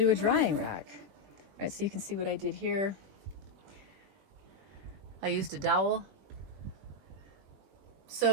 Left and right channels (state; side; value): late; left; 21 ms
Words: a drying rack. All right, so you can see what I did here. I used a dowel.